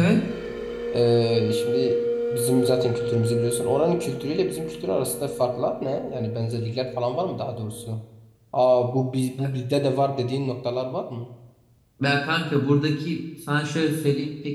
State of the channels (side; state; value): both; identical; correlation 1.00